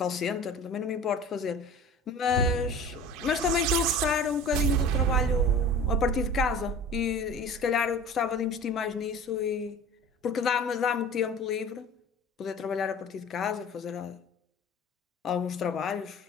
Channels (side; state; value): both; normal; correlation 0.40